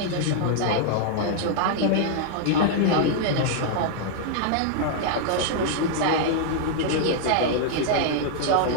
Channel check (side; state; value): both; different; correlation -0.01